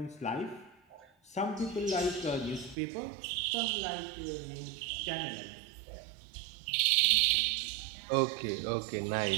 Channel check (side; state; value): left; drops out; at 2.8 s